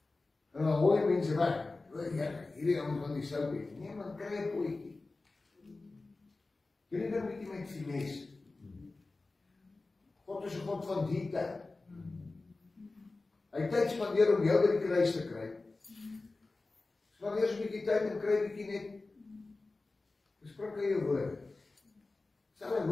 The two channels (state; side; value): quieter; right; 3.4 dB